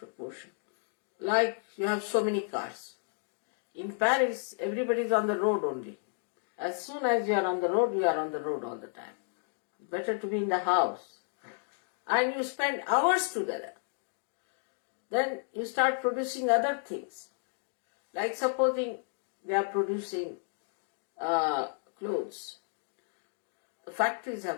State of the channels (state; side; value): silent; right; 56 dB below the other